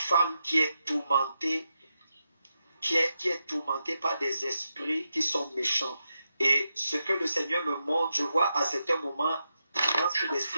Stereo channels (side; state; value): both; inverted; correlation -0.86